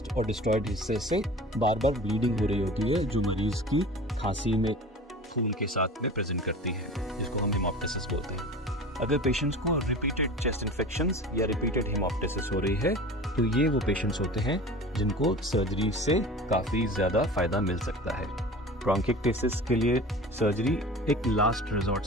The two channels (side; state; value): both; normal; correlation 0.37